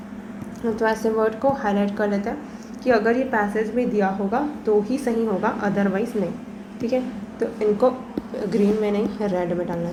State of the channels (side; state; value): both; identical; correlation 1.00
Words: तो ऐसे वर्ड को हाईलाइट कर लेते हैं कि अगर ये पैसेज में दिया होगा तो ही सही होगा, अदरवाइज़ नहीं। ठीक है, तो इनको ग्रीन में नहीं रेड में डालना